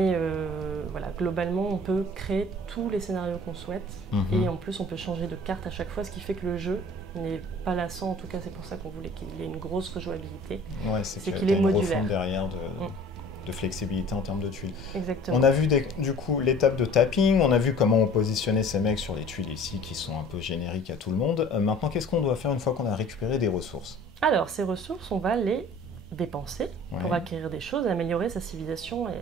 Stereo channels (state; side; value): normal; both; correlation 0.47